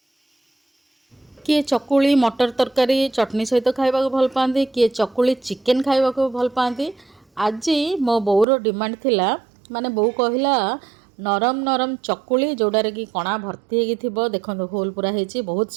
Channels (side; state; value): left; drops out; at 8.5 s